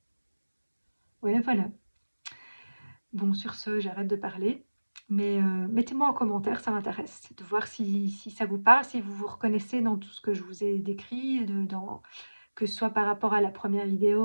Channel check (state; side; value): inverted; both; correlation -1.00